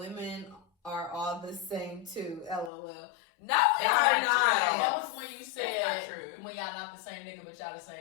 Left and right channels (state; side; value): drops out; right; at 2.7 s